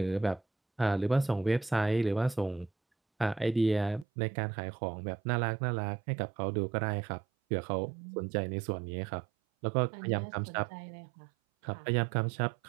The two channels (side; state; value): left; drops out; at 4.0 s